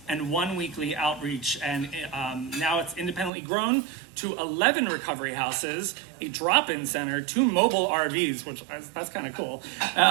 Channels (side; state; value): left; drops out; at 3.3 s